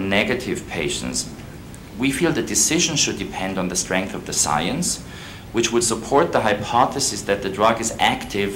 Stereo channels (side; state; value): both; identical; correlation 1.00